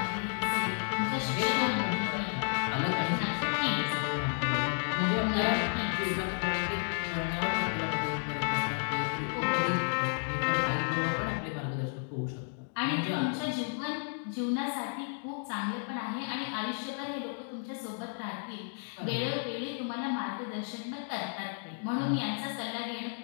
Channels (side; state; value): right; silent; 55 dB below the other